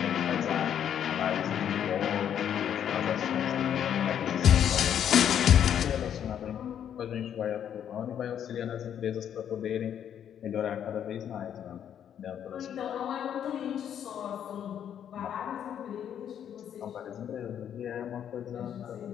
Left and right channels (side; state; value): right; quieter; 9.3 dB